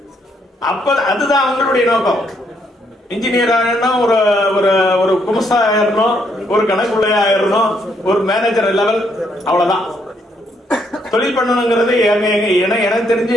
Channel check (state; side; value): normal; both; correlation 0.73